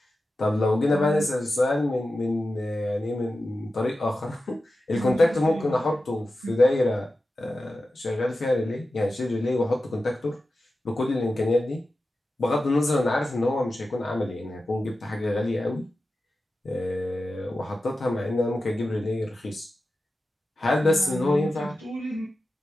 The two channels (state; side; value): normal; both; correlation 0.93